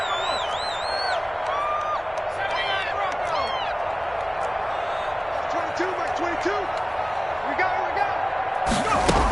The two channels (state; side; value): identical; both; correlation 1.00